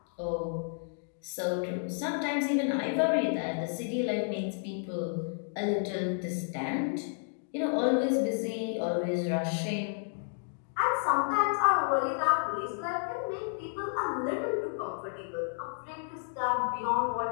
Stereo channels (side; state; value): right; silent; digital silence